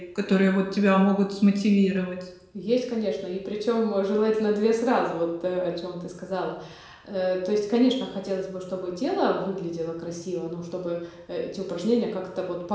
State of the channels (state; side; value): identical; both; correlation 1.00